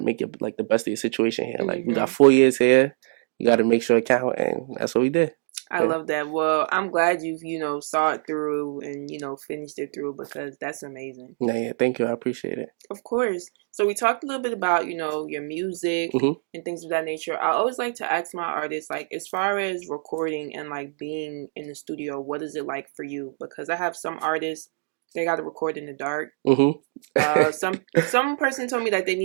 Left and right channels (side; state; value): left; silent; digital silence